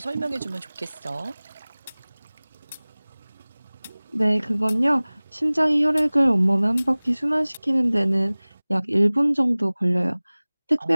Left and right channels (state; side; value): inverted; both; correlation -1.00